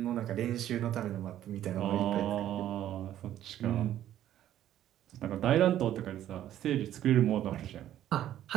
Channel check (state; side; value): quieter; left; 12.0 dB